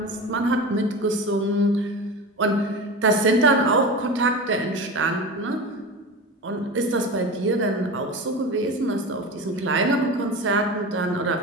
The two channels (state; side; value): normal; both; correlation 0.28